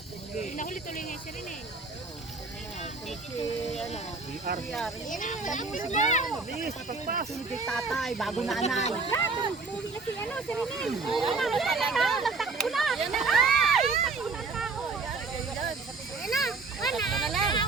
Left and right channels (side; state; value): left; quieter; 4.1 dB